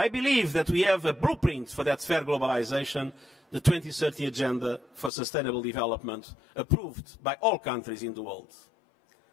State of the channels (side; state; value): right; drops out; at 5.1 s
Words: believe that we have a blueprint for that fair globalization, the 2030 Agenda for Sustainable Development, approved by all countries in the world.